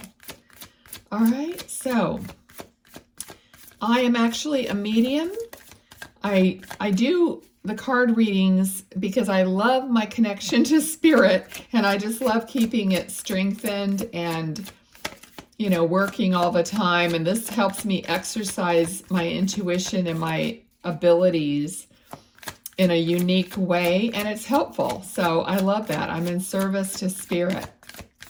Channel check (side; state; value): both; identical; correlation 1.00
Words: All right, so I am actually a medium. I do the card readings because I love my connection to spirit, and I just love keeping it strengthened and working all the time. And this helps me exercise my intuition and my abilities in a unique way. And it's helpful. So I love that. I'm in service to spirit.